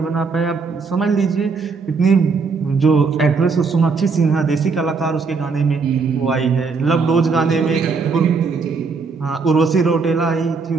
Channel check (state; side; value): quieter; left; 4.7 dB